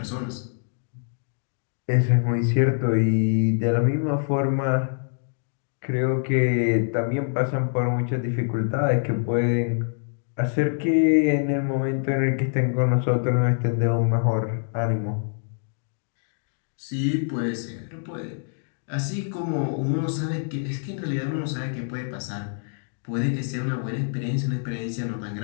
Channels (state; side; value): silent; right; digital silence